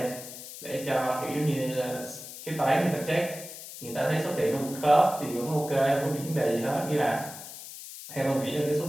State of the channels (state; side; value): noise; left; hiss, 12 dB below the sound